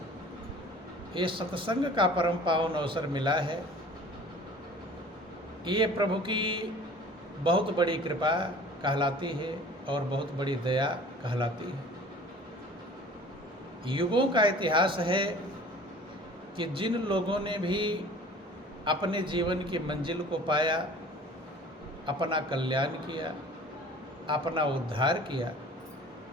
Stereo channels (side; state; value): both; normal; correlation 0.46